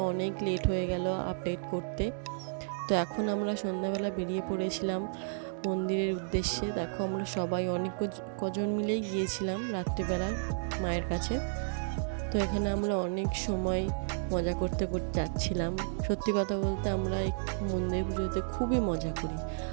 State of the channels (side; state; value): left; silent; digital silence